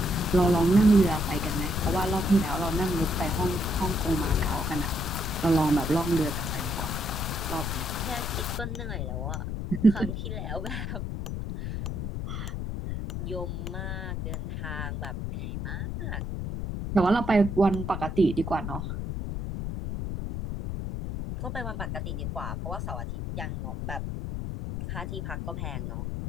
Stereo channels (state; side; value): noise; left; rumble, 4 dB below the sound